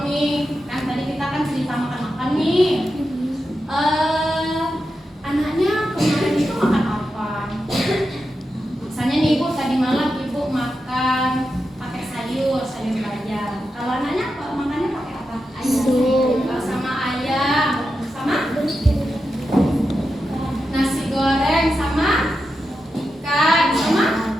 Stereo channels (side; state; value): both; normal; correlation 0.89